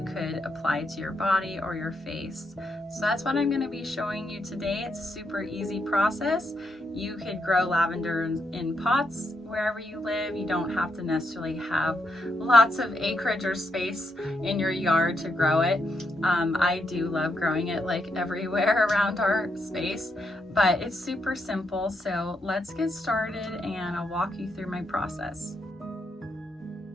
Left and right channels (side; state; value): both; normal; correlation 0.79